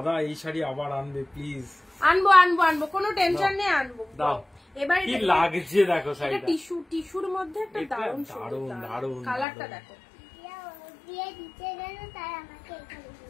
এই শাড়ি আবার আনবে প্লিজ। আনবো, কোনো টেনশন নেই, আনবো। দাও। এবার কি লাগছে দেখো শাড়িটা, এটা টিস্যুর মধ্যে একটা দারুণ কালারটা দেখো। দিয়ে দিতে গেল তাই আমাকে এখানে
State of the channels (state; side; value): drops out; right; at 9.5 s